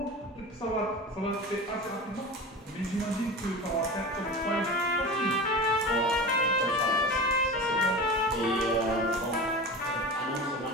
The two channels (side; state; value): both; normal; correlation 0.31